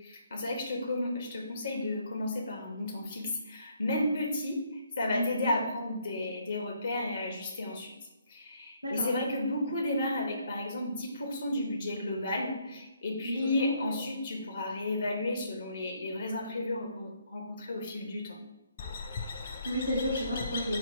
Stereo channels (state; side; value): inverted; both; correlation -0.69